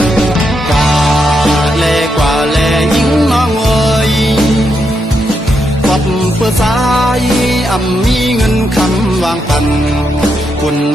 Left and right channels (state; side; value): normal; both; correlation 0.81